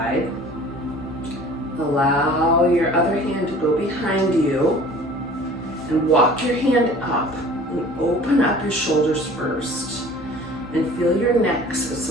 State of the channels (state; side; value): noise; right; hum, 25 dB below the sound